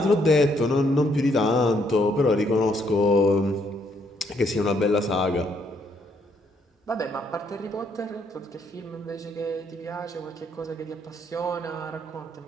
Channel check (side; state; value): both; normal; correlation 0.72